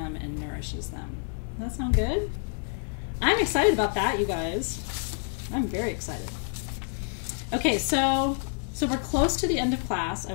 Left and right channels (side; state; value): right; silent; 58 dB below the other